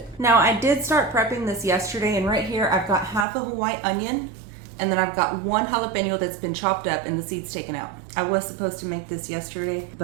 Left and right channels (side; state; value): left; drops out; at 3.2 s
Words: Now, I did start prepping this yesterday, and right here I've got half of a white onion, and then I've got 1 jalapeno that's been chopped up and the seeds taken out. I was supposed to make this yesterday,